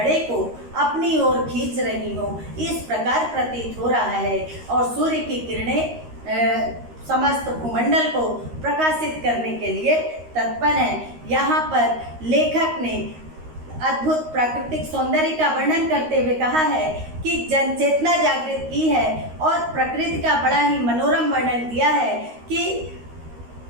को अपनी ओर खींच रही हो, इस प्रकार प्रतीत हो रहा है। और सूर्य की किरणें समस्त भूमंडल को प्रकाशित करने के लिए तत्पर हैं। यहाँ पर लेखक ने अद्भुत प्राकृतिक सौंदर्य का वर्णन करते हुए कहा है कि जनचेतना जागृत की है, और प्रकृति का बड़ा ही मनोरम वर्णन किया है कि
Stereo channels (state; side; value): late; left; 13 ms